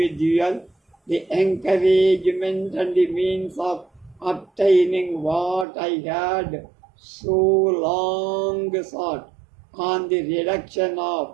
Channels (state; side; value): drops out; left; at 5.7 s